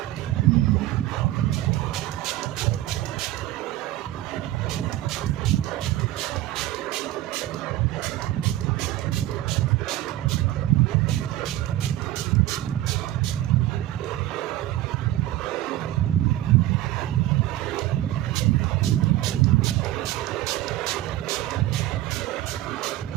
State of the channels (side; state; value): left; quieter; 14.9 dB